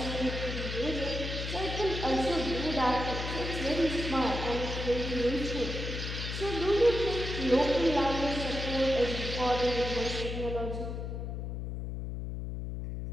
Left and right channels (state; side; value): noise; left; hum, 5 dB below the sound